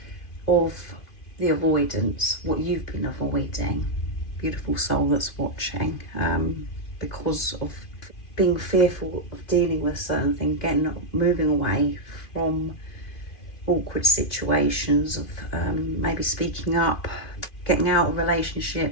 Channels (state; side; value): late; right; 2.5 ms